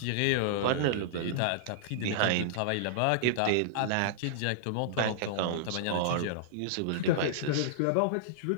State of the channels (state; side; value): different; both; correlation -0.02